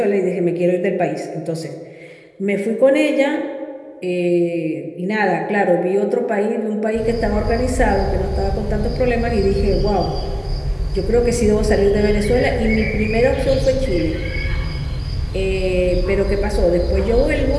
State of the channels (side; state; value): both; identical; correlation 1.00